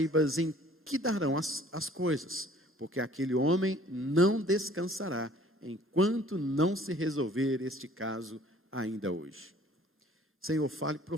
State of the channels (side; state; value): both; normal; correlation 0.54